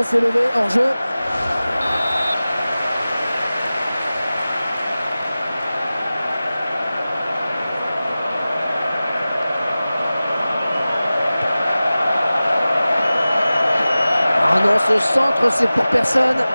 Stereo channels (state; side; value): inverted; both; correlation -0.97